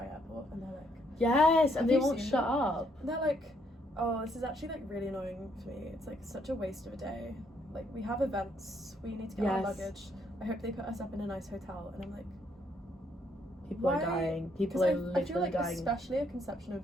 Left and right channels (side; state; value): both; normal; correlation 0.71